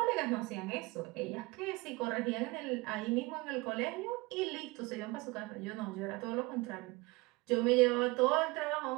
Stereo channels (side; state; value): left; quieter; 24.1 dB